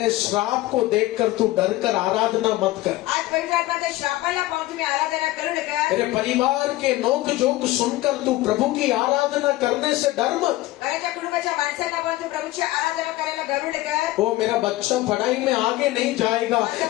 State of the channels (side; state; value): right; quieter; 17.6 dB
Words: श्राप को देखकर तू डर कर आराधना मत कर, आज पवित्र आत्माच्या श्रापाला पाहून तुम्ही आराधना करू नका। तेरे परिवार के नोक जोक सुनकर तू प्रभु की आराधना करने से डर मत। घराच्या कुटुंबाच्या माणसांना पाहून तू प्रभूची आराधना करायला घालू नका। ओ मेरा बच्चा पढ़ाई में आगे नहीं जाएगा,